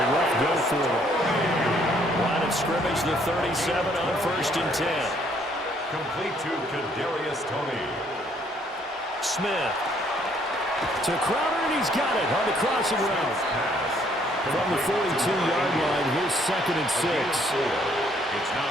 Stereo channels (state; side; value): normal; both; correlation 0.65